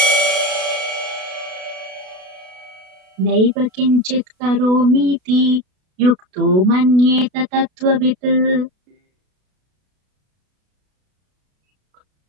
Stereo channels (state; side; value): late; left; 32 ms